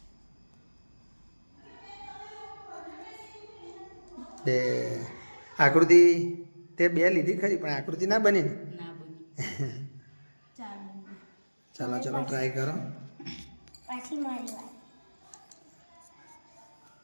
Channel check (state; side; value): inverted; both; correlation -1.00